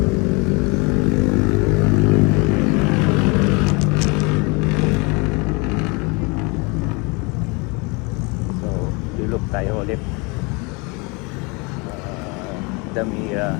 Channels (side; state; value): right; quieter; 29.1 dB